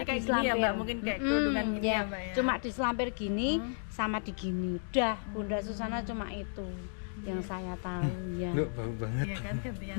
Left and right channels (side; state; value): right; silent; digital silence